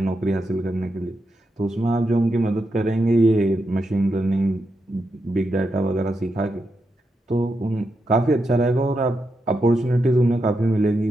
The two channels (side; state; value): both; normal; correlation 0.85